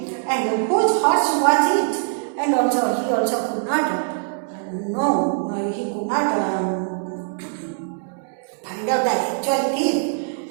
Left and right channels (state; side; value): silent; left; digital silence